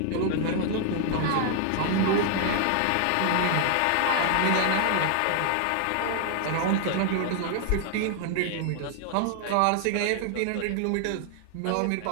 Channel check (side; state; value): both; different; correlation 0.00